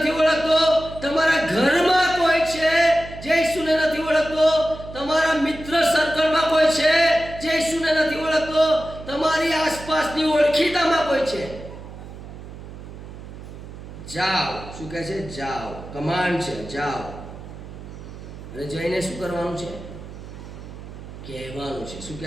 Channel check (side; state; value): right; noise; hum, 13 dB below the sound